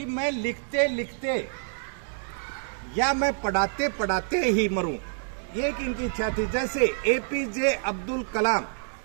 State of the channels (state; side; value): silent; left; 59 dB below the other